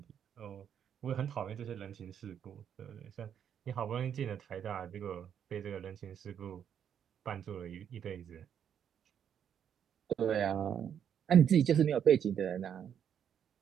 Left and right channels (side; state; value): left; quieter; 8.7 dB